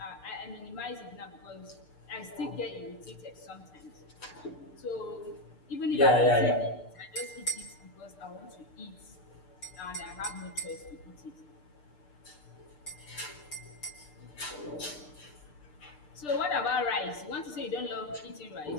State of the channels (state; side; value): late; right; 6.7 ms